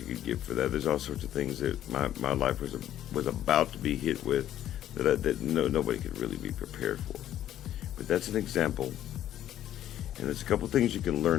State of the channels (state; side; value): quieter; right; 11.9 dB